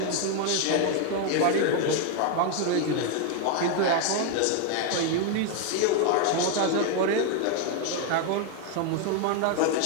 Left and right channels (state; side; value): different; both; correlation 0.01